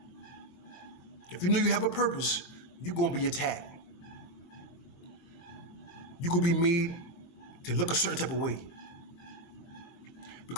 If you know you have a purpose, you're gonna be attacked. You could be made to look a certain type of way.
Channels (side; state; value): right; late; 22 ms